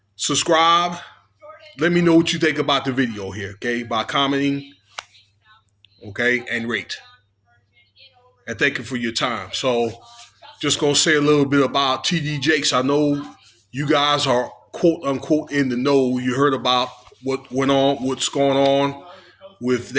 Subscribe. Let me know what you think about the video here, okay? By commenting, okay, and rate. And thank you for your time. So, just going to say a little bit about TD Jakes. I know you guys are quote unquote in the know. You heard about what went on, what's going on with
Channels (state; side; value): identical; both; correlation 1.00